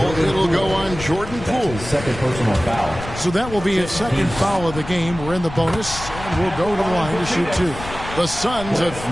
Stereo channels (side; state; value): left; noise; rumble, 11 dB below the sound